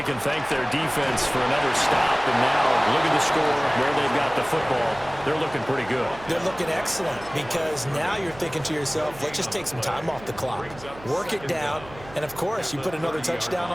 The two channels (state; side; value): noise; right; hum, 19 dB below the sound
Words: can thank their defense for another stop. And now look at the score, where they've got the football. They're looking pretty good. They're looking excellent because now you're thinking to yourself, let's just take some time off the clock. Work it down. And, of course, you put another touchdown